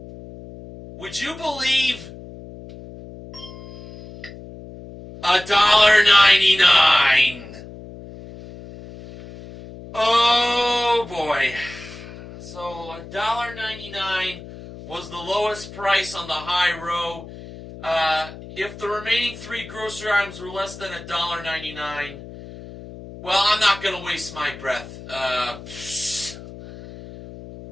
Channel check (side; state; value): left; noise; hum, 15 dB below the sound